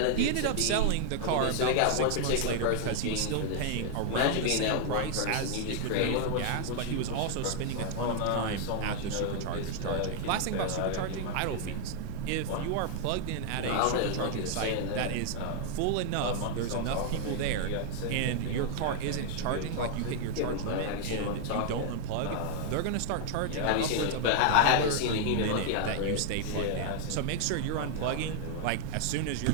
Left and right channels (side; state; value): both; different; correlation 0.00